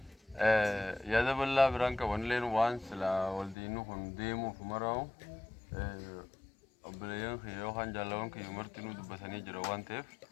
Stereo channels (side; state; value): right; drops out; at 3.6 s